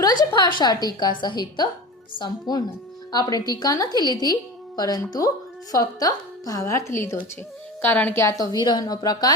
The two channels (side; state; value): both; normal; correlation 0.30